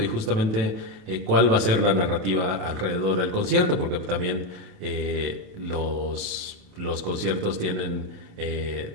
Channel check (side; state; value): left; late; 27 ms